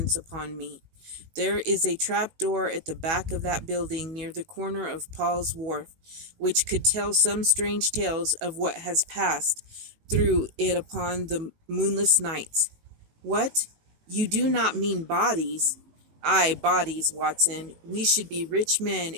upon me. There is a trap door at the back of that building near the corner of Paul's Wharf, which could tell some strange tales of what has passed through it upon the moonless nights." "What? You do not mean bodies?" "Aye, bodies, Watson. We should be rich men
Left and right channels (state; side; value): late; left; 19 ms